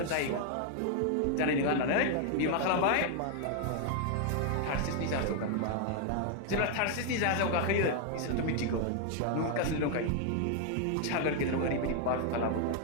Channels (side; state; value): both; different; correlation 0.00